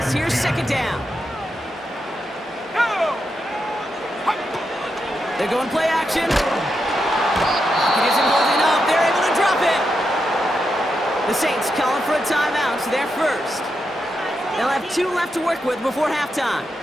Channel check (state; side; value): normal; both; correlation 0.85